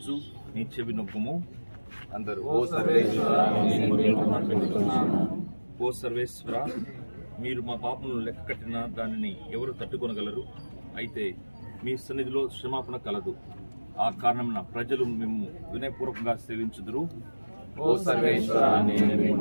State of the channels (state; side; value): inverted; both; correlation -1.00